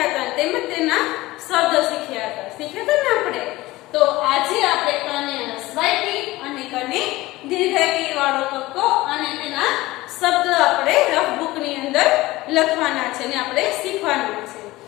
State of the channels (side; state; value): right; quieter; 18.8 dB